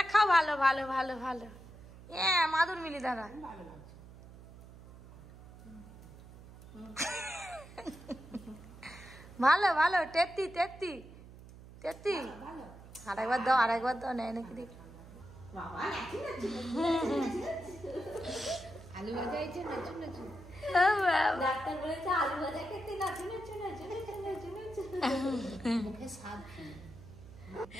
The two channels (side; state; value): right; noise; hum, 18 dB below the sound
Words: খাও, ভালো ভালো ভালো ভালো। হ্যাঁ মাদুর মিলি দাঁড়া। ভালো ভালো, তেত্তি তেত্তি তেত্তি। আরেকবার দাও, আরেকবার দাও, নেয় নাকি দেখি। আলু ভাজা হয়েছে, নাচু নাচু। ডাক্তার বলেছে আলু ভাজা খেতে, নাচু নাচু নাচু নাচু নাচু নাচু। মুখে স্বাদ